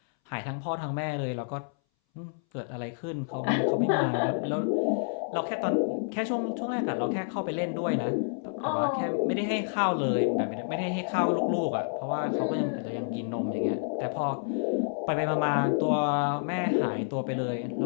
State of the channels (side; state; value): right; silent; 59 dB below the other